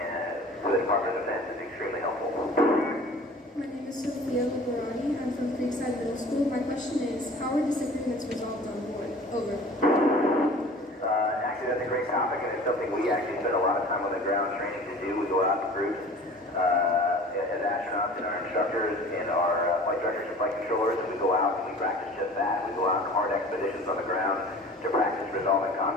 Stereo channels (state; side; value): normal; both; correlation 0.44